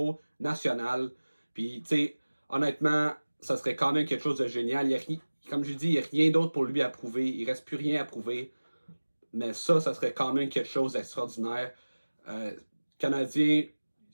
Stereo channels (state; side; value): inverted; both; correlation -1.00